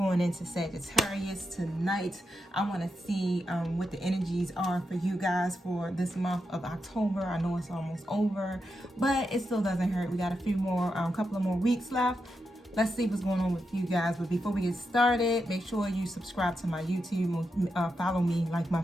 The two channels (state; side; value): normal; both; correlation 0.86